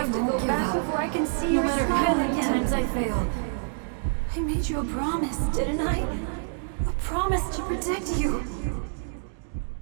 to go back before I can see your smile again? No matter how many times I fail. I made you a promise, didn't I? A promise to protect you.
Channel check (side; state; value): left; silent; digital silence